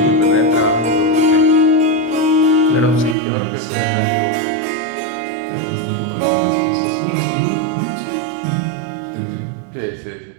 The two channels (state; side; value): drops out; left; at 3.2 s